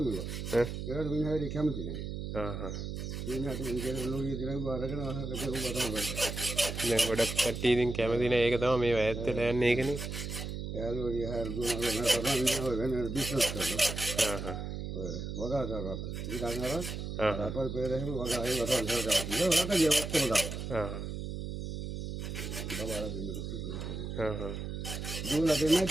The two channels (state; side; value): noise; right; hum, 5 dB below the sound